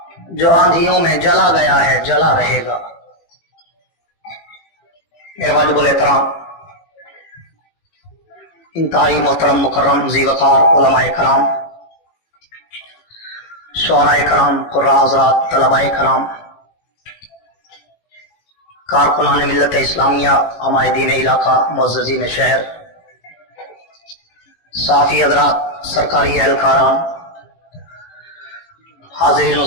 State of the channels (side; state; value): right; late; 18 ms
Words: جو آندھیوں میں جلا گیا ہے جلا رہے گا. میرے واجب الاحترام انتہائی محترم مکرم ذی وقار علماء کرام، شعراء کرام، قراء حضرات، طلباء کرام، کارکنان ملت اسلامیہ، عمائدین علاقہ، معززین شہر، صحافی حضرات، سرکاری اہلکاران، حاضرین و